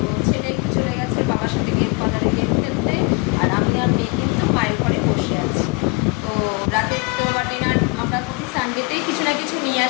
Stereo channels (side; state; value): right; quieter; 30.3 dB